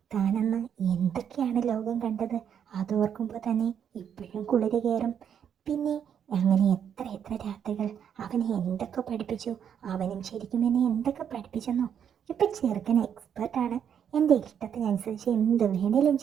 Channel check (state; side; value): quieter; left; 8.4 dB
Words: താനന്ന് എന്തൊക്കെയാണ് ലോകം കണ്ടത്? അതോർക്കുമ്പോൾ തന്നെ ഇപ്പോഴും കുളിര് കയറും. പിന്നെ അങ്ങനെ എത്ര എത്ര രാത്രികൾ അവനെ എന്തൊക്കെ പഠിപ്പിച്ചു. അവനും ശരിക്കും എന്നെ എന്തൊക്കെ പഠിപ്പിച്ചെന്നോ. ഇപ്പം ചെറുക്കൻ എക്സ്പേർട്ടാണ്. എൻ്റെ ഇഷ്ടത്തിനനുസരിച്ച് എന്ത് വേണേലും